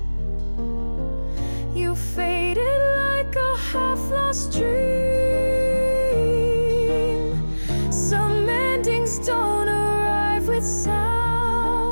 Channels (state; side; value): inverted; both; correlation -1.00